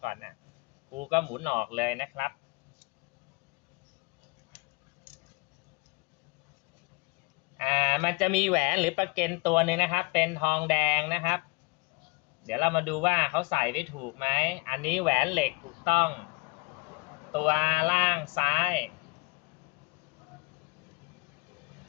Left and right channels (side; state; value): right; quieter; 27.1 dB